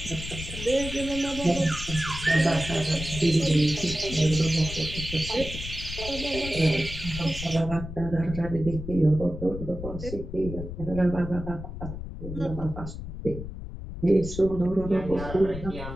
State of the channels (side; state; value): left; noise; rumble, 8 dB below the sound